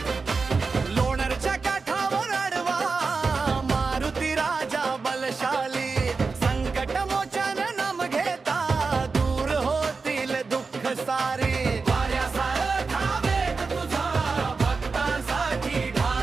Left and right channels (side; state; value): left; quieter; 4.4 dB